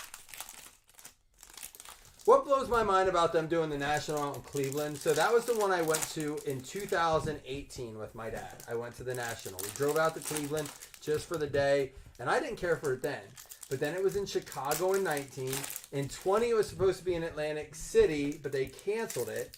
What blows my mind about them doing the National out in Cleveland, so that was the one I went to in 2018 with my dad. I went to the National. We drove out to Cleveland just for the day, and I didn't care for it then. But then it was in Chicago in 19. In 20, it was supposed to be in Atlantic City, but they canceled it.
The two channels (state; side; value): identical; both; correlation 1.00